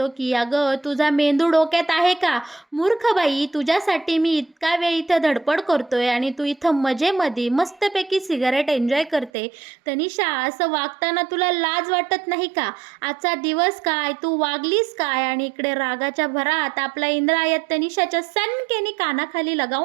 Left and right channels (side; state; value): left; drops out; at 9.3 s